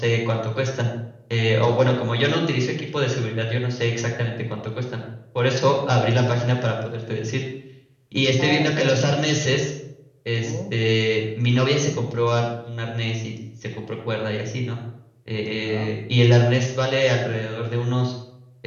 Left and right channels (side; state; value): both; identical; correlation 1.00